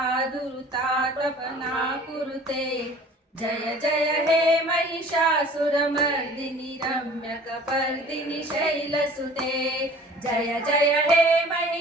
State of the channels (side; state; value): both; normal; correlation 0.47